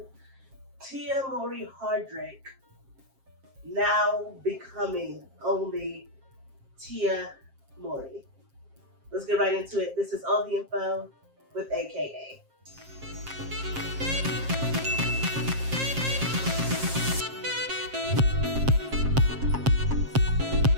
Mowry Hardrict now becoming only Mowry. Let's get right into it. This is all the info with aka.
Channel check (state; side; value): late; left; 7.5 ms